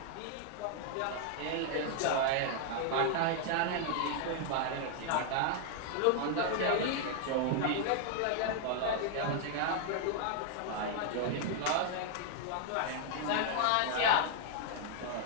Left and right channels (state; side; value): different; both; correlation 0.00